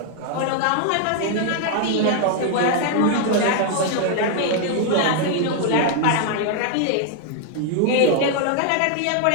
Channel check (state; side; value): different; both; correlation 0.00